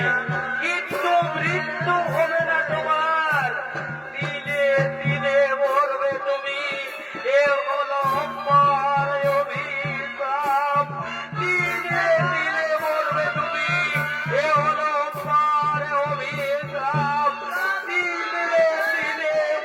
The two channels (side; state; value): both; identical; correlation 1.00